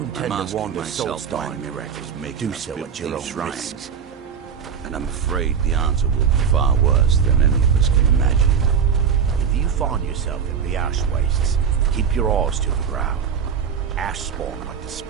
I'm asking myself why miracles make us build these shrines. And I'm afraid the answer will be far worse than any of us can imagine. If you find yourself in the ash wastes, keep your eyes to the ground. Ash spawn like to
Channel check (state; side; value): quieter; left; 7.2 dB